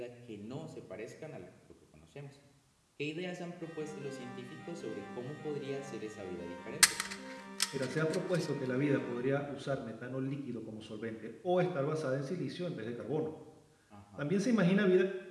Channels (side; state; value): both; identical; correlation 1.00